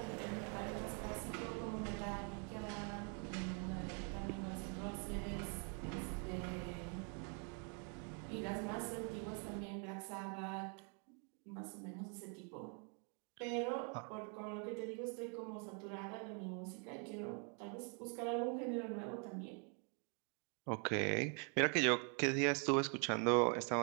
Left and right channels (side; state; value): left; quieter; 38.4 dB